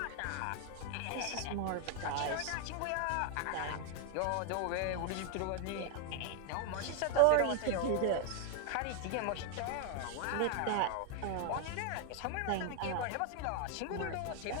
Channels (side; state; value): both; different; correlation 0.00